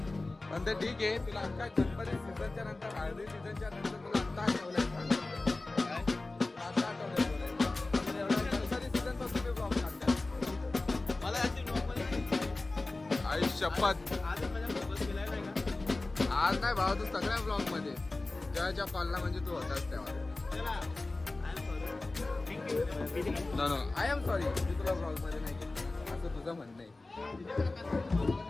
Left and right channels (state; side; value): quieter; right; 3.1 dB